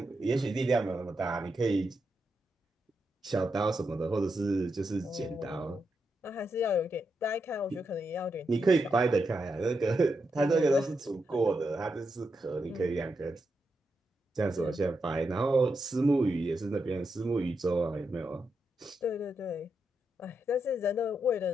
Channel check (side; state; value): both; normal; correlation 0.84